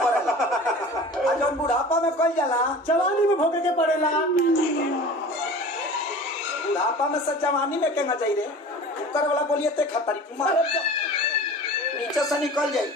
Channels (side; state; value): both; normal; correlation 0.39